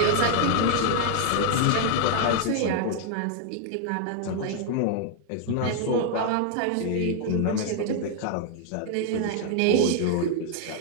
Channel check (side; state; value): both; different; correlation 0.00